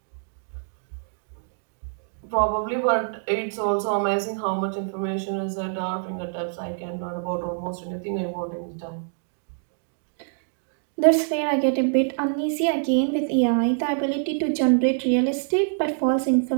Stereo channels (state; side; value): silent; left; digital silence